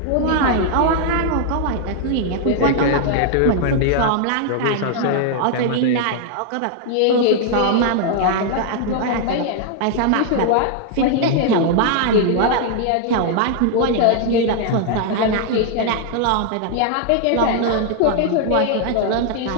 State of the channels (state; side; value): different; both; correlation 0.00